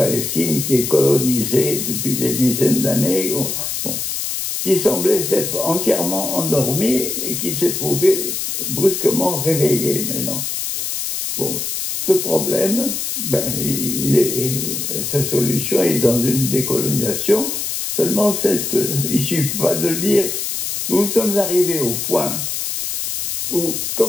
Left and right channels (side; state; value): left; noise; hiss, 3 dB below the sound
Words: qui est colonisée depuis des dizaines d'années, qui semblait s'être entièrement endormie et qui s'est trouvée brusquement réveillée maintenant. Bon, ce problème, sa solution est dans une décolonisation. Seulement, il ne suffit pas de le dire. Nous sommes arrivés au point où,